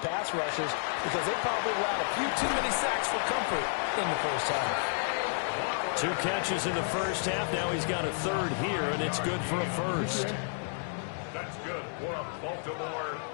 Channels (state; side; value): silent; right; digital silence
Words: rushers because they probably allowed a few too many sacks for comfort in the first half. 2 catches in the first half. Now he's got a 3rd here, and it's good for a first. That's good for a Baltimore